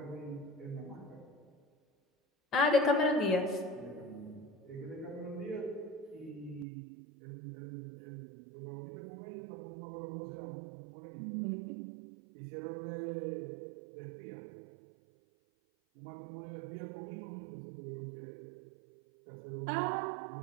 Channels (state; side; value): drops out; left; at 6.7 s